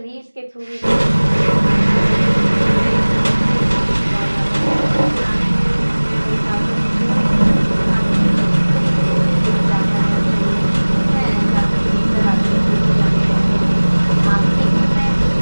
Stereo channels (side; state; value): both; inverted; correlation -1.00